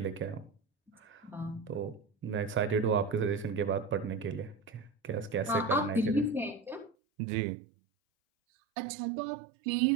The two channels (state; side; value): drops out; left; at 7.0 s